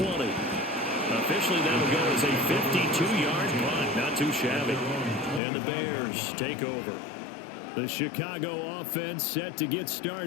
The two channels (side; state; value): right; drops out; at 5.4 s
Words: Officially, that'll go as a 52-yard punt. Not too shabby. And the Bears take over. The Chicago offense set to get